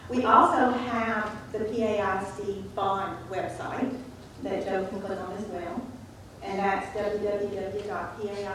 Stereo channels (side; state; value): both; identical; correlation 1.00